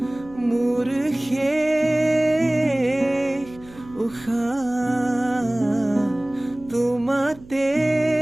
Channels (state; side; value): noise; right; hum, 21 dB below the sound